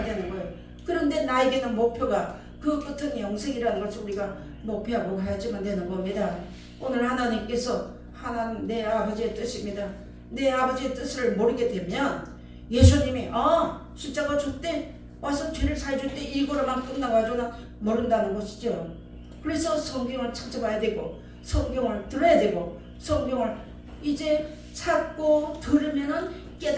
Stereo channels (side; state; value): both; identical; correlation 1.00